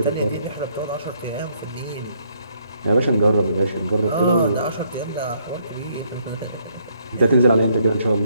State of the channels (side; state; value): both; inverted; correlation -0.70